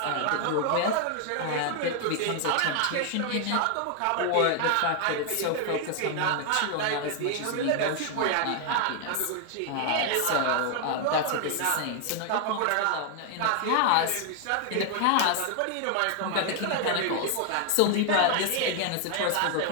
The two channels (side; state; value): both; different; correlation 0.00